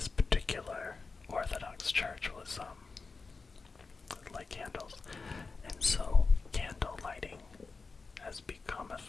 particular Orthodox church was light candles. And so candle lighting has become a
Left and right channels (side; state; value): right; quieter; 4.3 dB